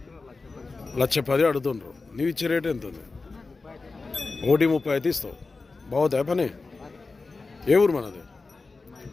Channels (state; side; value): quieter; right; 3.9 dB